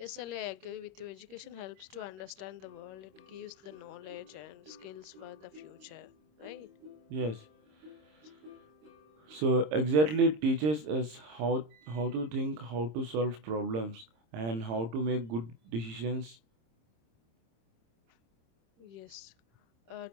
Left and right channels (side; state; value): left; late; 26 ms